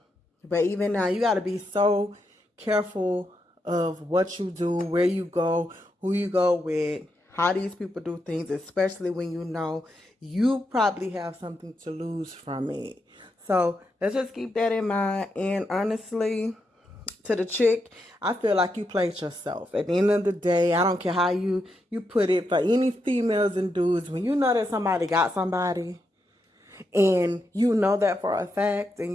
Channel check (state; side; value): normal; both; correlation 0.83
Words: But even now, you got to be so careful of what you do, where you go, who you go with, how these people do things, especially when you know you probably have something to lose from it. So let's just keep that in mind. And honestly, to the chick, I feel like you played yourself. At the end of the day, I don't care how you put it, for any females and dudes, when you know that somebody got somebody and you know that for a fact